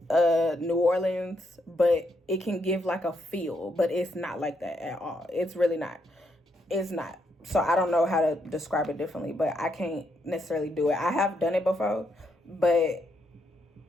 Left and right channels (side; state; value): both; normal; correlation 0.77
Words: New Orleans, but it can give like a feel, but it's not like that at all. It's really not. It's not. So I don't know how to describe it differently, but I can't necessarily do it. I have done it before, but